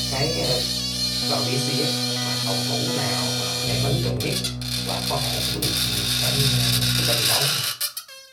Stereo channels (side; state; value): both; identical; correlation 1.00